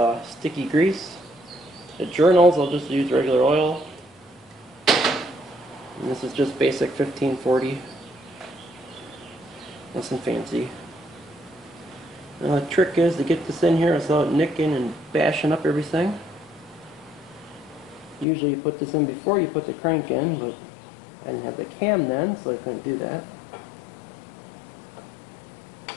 sticky grease. The journals I'll just use regular oil. And this is just basic 1540. Nothing fancy. Now the trick is to get this in here without nicking and bashing up everything. Usually you put this in before you put the crank in, but I didn't have the cam then, so I couldn't do that.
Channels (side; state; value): right; drops out; at 18.2 s